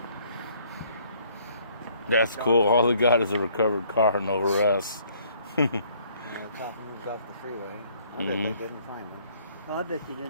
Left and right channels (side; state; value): both; inverted; correlation -0.62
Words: That's cool. All they got is a recovered car, no arrests. The cop moved off the freeway. I bet they Mhm. didn't find him. Oh, I bet you